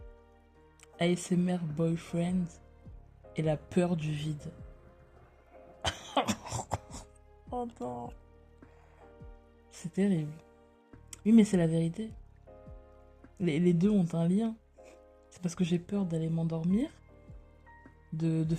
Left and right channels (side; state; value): both; identical; correlation 1.00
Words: ASMR Boyfriend et la peur du vide. Oh non. C'est terrible. Oui, mais c'est la vérité. Les deux ont un lien. C'est parce que j'ai peur d'aller m'endormir, de